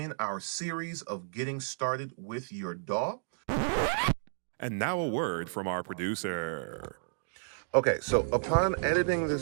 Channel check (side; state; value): left; silent; digital silence